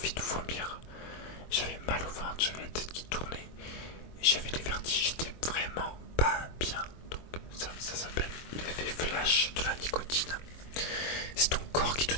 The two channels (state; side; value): late; right; 23 ms